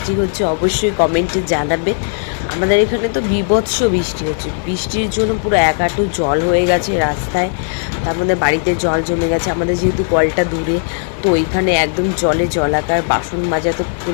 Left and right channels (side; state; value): right; silent; 69 dB below the other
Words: হচ্ছে অবশ্যই কমেন্টে জানাবে। আমাদের এখানে তো বীভৎস বৃষ্টি হচ্ছে। বৃষ্টির জন্য পুরো এক হাঁটু জল হয়ে গেছে রাস্তায়, তার মধ্যে বাড়িতে জল জমে গেছে। আমাদের যেহেতু কলটা দূরে, তো ওইখানে একদম জলে জলাকার। বাসন মাজা তো